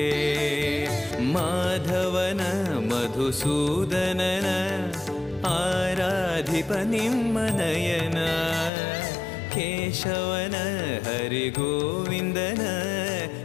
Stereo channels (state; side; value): drops out; right; at 8.7 s